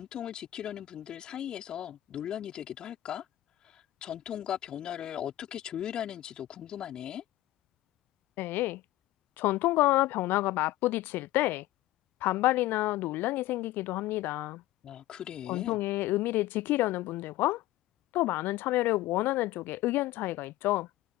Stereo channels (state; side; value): quieter; right; 16.2 dB